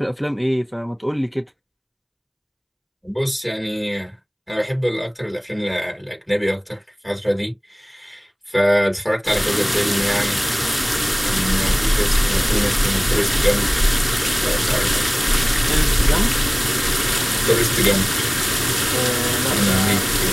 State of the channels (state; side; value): identical; both; correlation 1.00